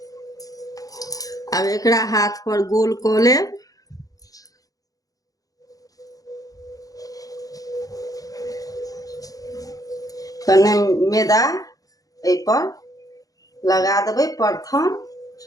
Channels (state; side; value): late; right; 0.17 ms